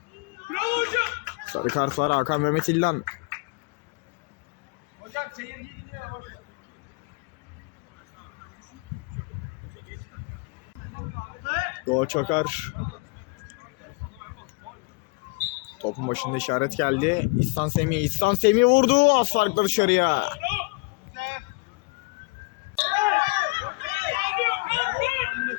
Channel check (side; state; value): right; quieter; 30.4 dB